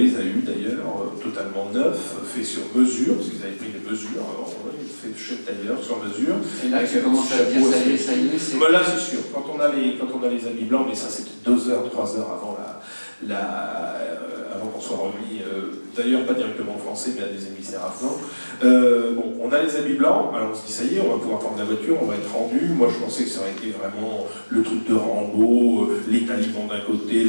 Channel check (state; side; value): inverted; both; correlation -1.00